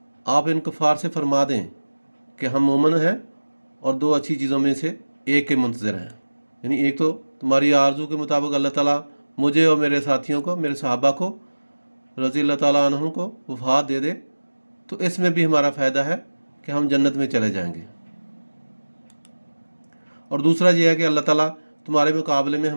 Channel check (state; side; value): inverted; both; correlation -1.00